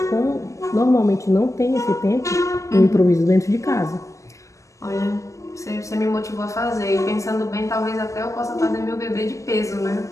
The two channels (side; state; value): right; late; 0.15 ms